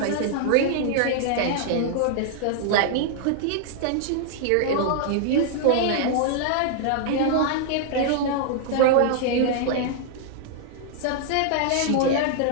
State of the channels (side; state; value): both; different; correlation -0.01